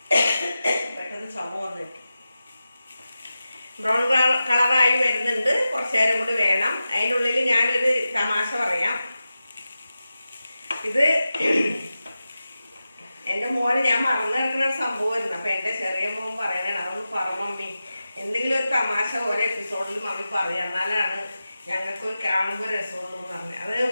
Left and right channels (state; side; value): inverted; both; correlation -0.93